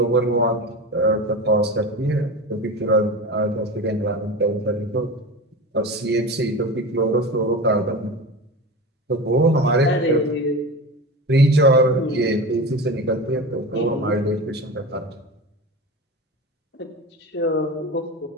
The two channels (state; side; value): normal; both; correlation 0.28